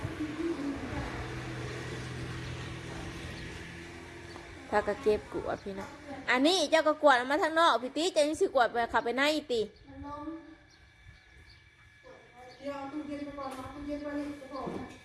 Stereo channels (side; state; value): both; identical; correlation 1.00